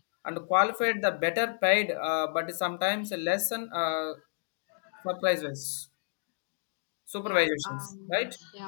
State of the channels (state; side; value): silent; right; digital silence